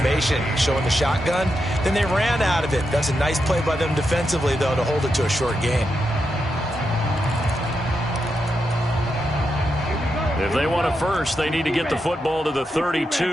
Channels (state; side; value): normal; both; correlation 0.85